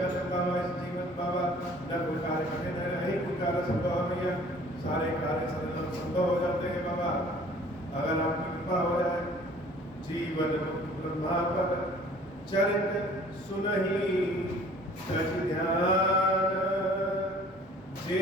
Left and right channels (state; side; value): normal; both; correlation 0.52